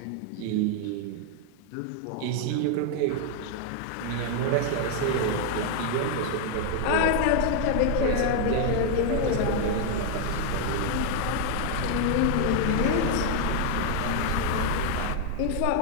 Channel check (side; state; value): both; different; correlation 0.00